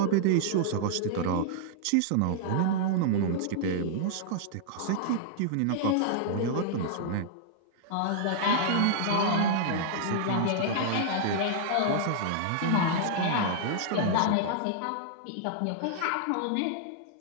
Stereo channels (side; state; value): both; different; correlation -0.01